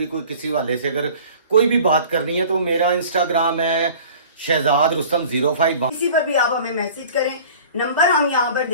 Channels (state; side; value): inverted; both; correlation -0.45